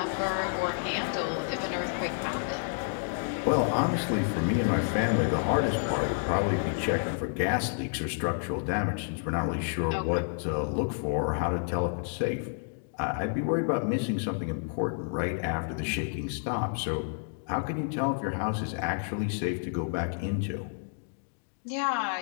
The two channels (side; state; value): right; silent; digital silence